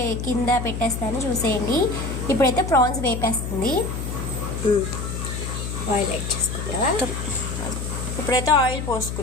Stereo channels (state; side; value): noise; left; hum, 5 dB below the sound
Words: కింద పెట్టేస్తాను, చూసేయండి. ఇప్పుడైతే ప్రాన్స్ వేపేస్తుంది. ఆయిల్ యాడ్ చేసుకుందాం. ఇప్పుడైతే ఆయిల్